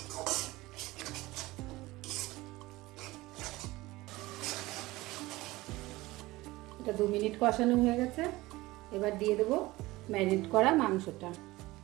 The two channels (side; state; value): left; quieter; 19.5 dB